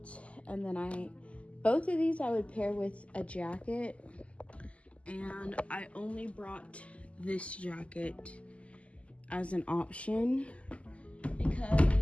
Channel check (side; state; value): right; late; 0.062 ms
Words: And then both of these I would pair with a jacket. And I only brought this jacket as an option